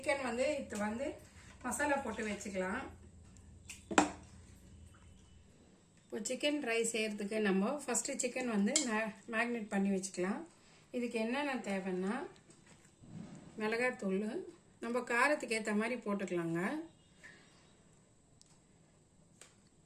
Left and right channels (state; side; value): identical; both; correlation 1.00